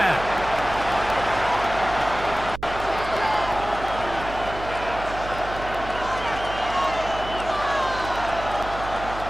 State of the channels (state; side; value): noise; right; hum, 11 dB below the sound